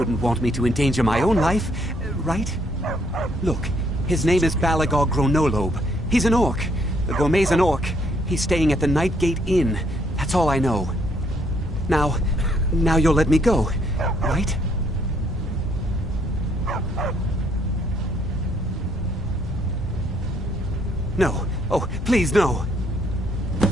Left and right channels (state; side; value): normal; both; correlation 0.69